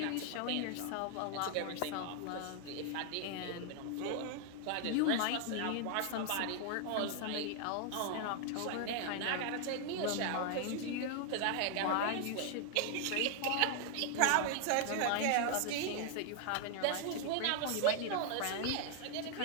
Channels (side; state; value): both; different; correlation 0.00